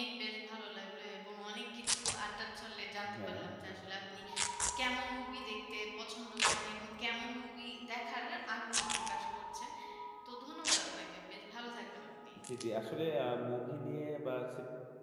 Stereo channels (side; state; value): both; identical; correlation 1.00